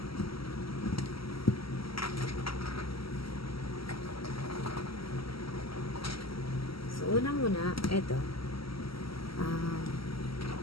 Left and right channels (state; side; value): late; right; 0.75 ms